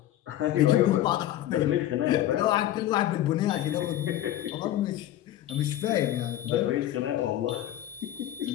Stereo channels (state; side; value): quieter; right; 13.2 dB